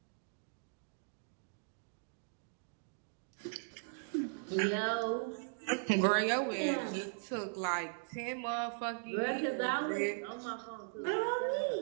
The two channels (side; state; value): left; silent; digital silence